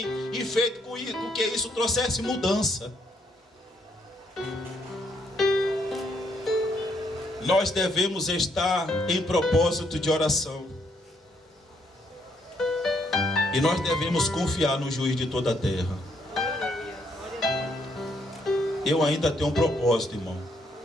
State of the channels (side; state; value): both; normal; correlation 0.72